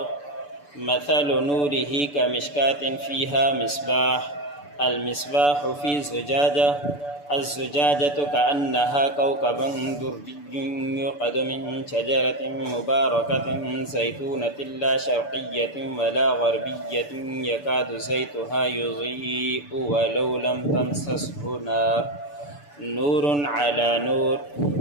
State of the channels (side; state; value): right; late; 6.9 ms